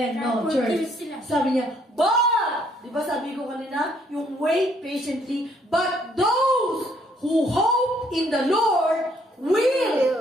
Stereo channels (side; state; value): both; normal; correlation 0.67